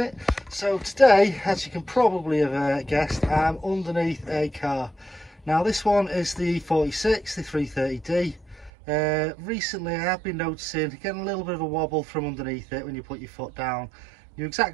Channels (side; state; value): left; drops out; at 8.7 s